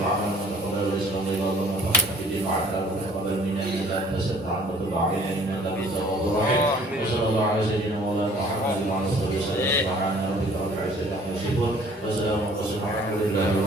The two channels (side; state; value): both; normal; correlation 0.55